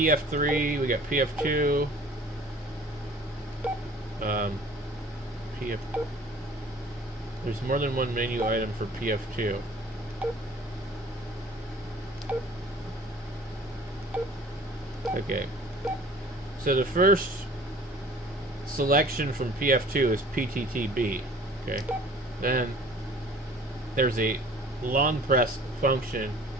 we got PF2. PF. There's more than one menu item for PF2. Okay. So the first selection from PF2 is PTTB. Okay. Then there's a long press function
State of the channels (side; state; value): both; normal; correlation 0.49